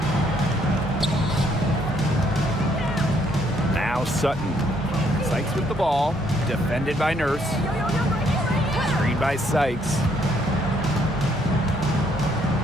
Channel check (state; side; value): normal; both; correlation 0.69